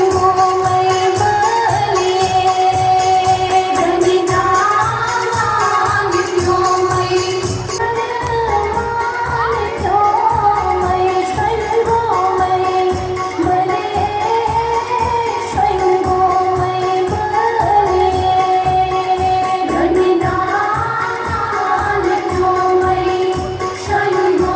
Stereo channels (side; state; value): both; identical; correlation 1.00